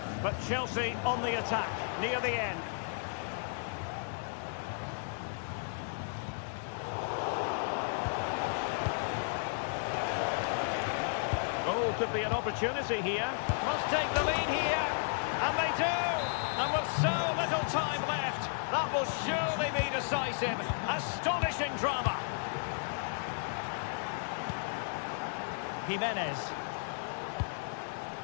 but Chelsea on the attack near the end. Oh, could be an opportunity here. Must take the lead here. And they do. And with so little time left, that will surely be decisive. Astonishing drama. Jimenez.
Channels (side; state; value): right; silent; 55 dB below the other